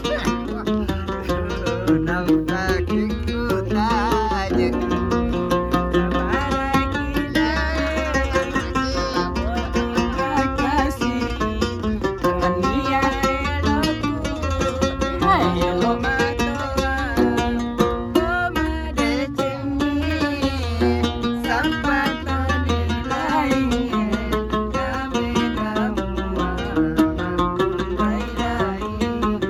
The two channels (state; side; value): identical; both; correlation 1.00